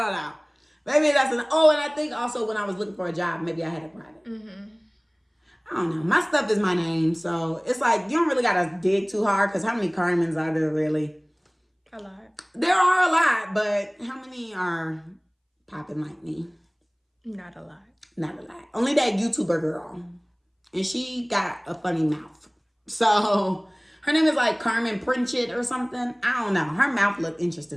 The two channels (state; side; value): identical; both; correlation 1.00